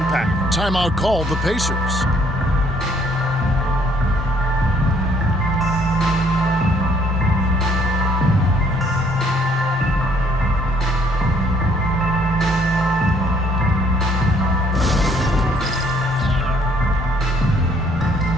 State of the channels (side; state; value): both; normal; correlation 0.64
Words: Timeout called the Pacers.